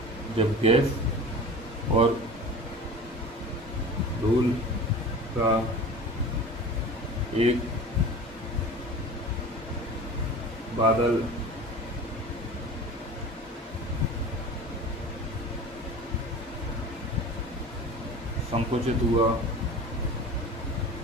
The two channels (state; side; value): normal; both; correlation 0.36